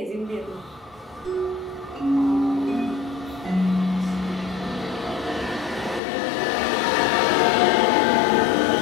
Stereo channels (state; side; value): drops out; right; at 6.0 s